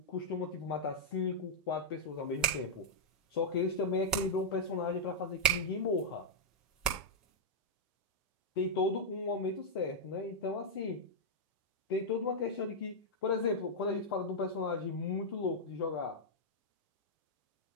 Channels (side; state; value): both; normal; correlation -0.06